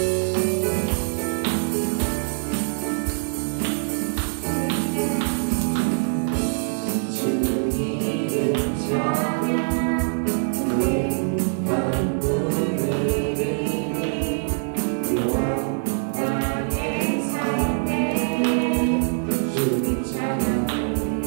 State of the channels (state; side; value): silent; left; 63 dB below the other